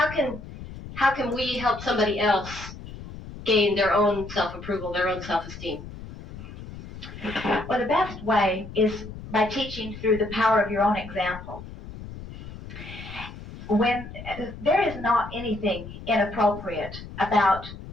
can we help somebody else gain their own self-approval, their own self-esteem? Well, the best way is by teaching through the power of your own example. When there is not anything inappropriate about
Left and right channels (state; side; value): noise; left; rumble, 13 dB below the sound